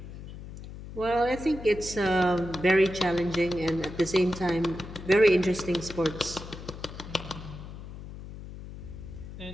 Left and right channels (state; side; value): noise; left; hum, 12 dB below the sound